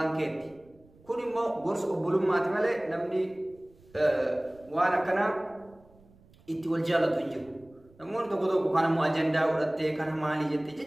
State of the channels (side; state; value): right; noise; rumble, 28 dB below the sound